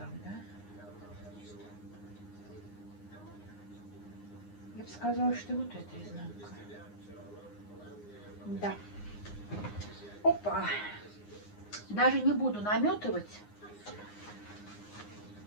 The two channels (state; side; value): late; right; 9.7 ms